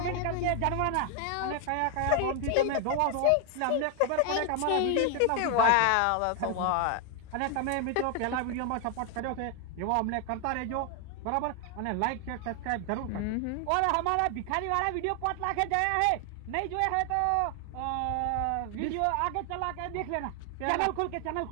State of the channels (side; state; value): both; different; correlation 0.00